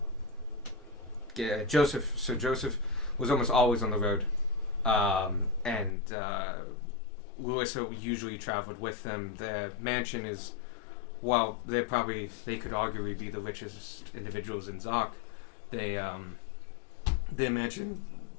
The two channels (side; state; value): right; drops out; at 5.9 s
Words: Sir Joseph was almost always on the road. And Louisa usually traveled with them. Their mansion is, while they could arguably be the richest individuals in Zoc, their mansion,